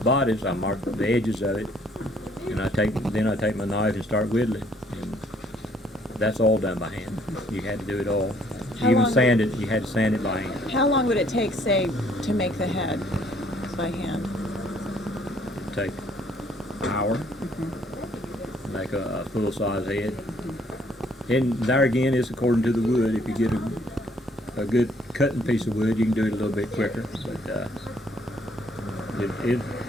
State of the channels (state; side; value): normal; both; correlation 0.64